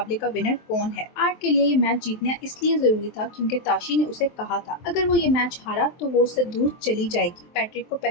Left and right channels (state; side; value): late; right; 23 ms